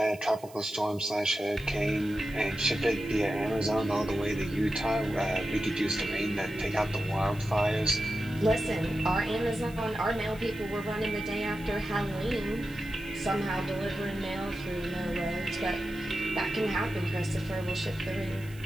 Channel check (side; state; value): right; noise; hiss, 22 dB below the sound